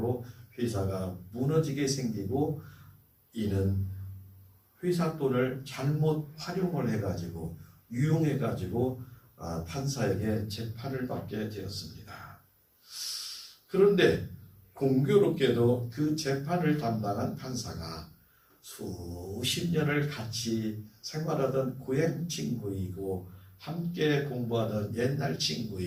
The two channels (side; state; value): both; identical; correlation 1.00